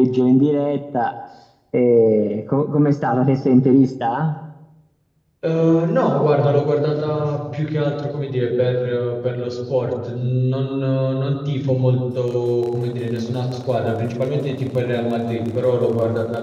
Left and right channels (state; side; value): identical; both; correlation 1.00